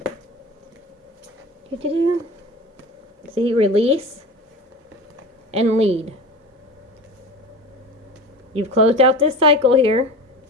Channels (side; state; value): both; normal; correlation 0.33